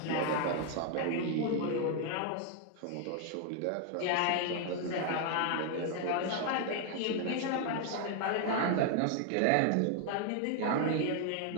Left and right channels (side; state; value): both; different; correlation 0.00